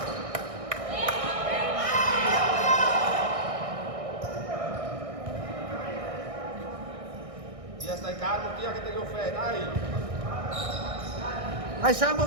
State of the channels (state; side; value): late; left; 1.6 ms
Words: Via, stai calmo, via che te lo fai, dai! Vai Sambo,